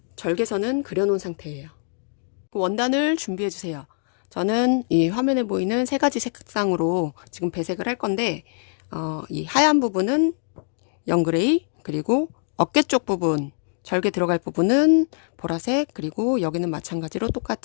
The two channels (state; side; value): silent; right; 63 dB below the other